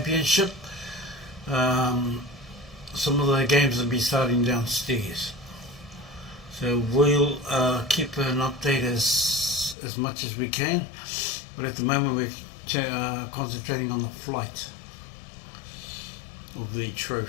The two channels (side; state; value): right; drops out; at 9.8 s